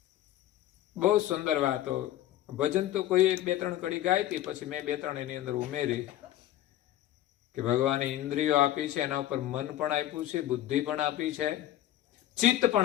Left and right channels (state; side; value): quieter; right; 13.3 dB